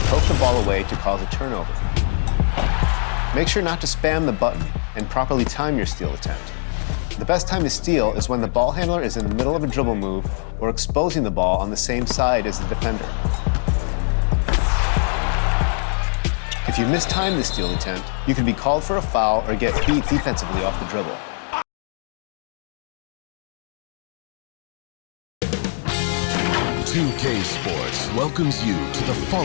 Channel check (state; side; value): silent; right; 62 dB below the other